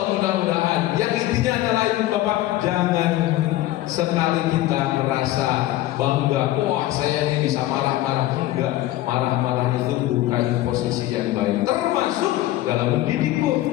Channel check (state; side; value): quieter; right; 15.4 dB